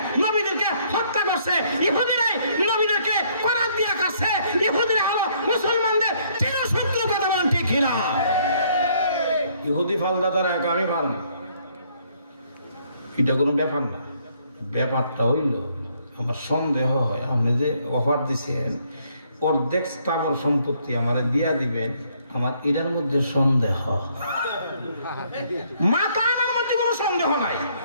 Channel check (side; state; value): both; inverted; correlation -0.67